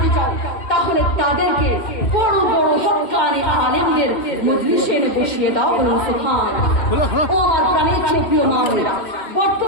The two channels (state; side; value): late; right; 2.1 ms